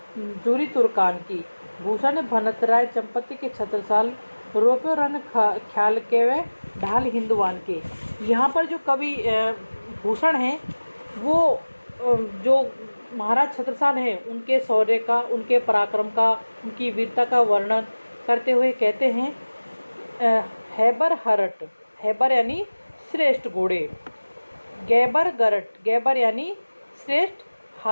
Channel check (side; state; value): both; inverted; correlation -1.00